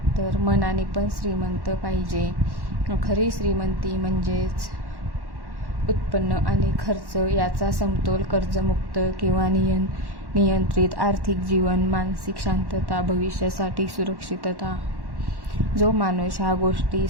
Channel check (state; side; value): late; left; 1.1 ms